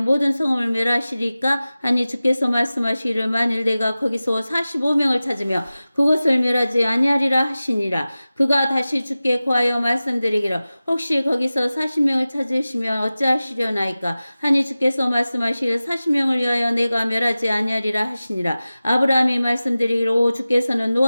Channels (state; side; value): inverted; both; correlation -0.96